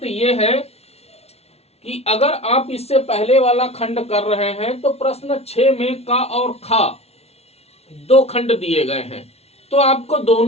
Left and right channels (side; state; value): right; late; 0.30 ms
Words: यह है कि अगर आप इससे पहले वाला खंड कर रहे हैं तो प्रश्न 6 में का और खा 2 खंड दिए गए हैं, तो आपको